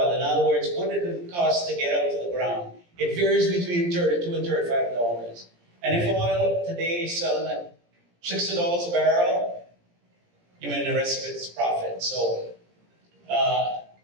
in other words, what did it cost to get out to the ground? It varies between $32 and $35. And if oil today is selling at $60 a barrel, you mean the rest of it's profit. So,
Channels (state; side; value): late; left; 17 ms